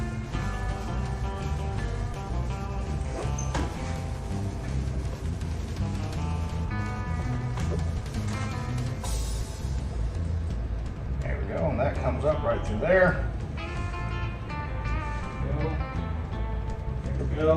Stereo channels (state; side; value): identical; both; correlation 1.00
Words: And that comes up right through there. There we